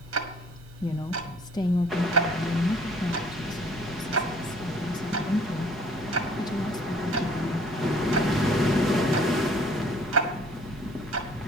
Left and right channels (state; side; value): normal; both; correlation 0.55